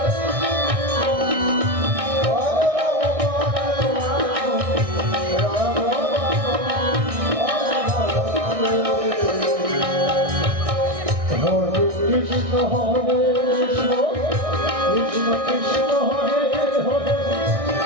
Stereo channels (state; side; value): late; left; 1.6 ms